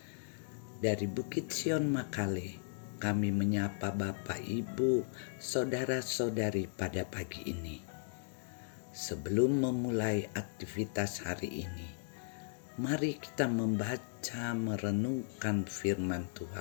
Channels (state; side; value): silent; right; digital silence